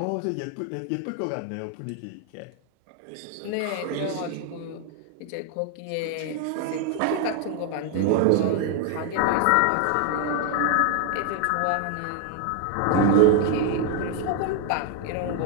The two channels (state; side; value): different; both; correlation 0.01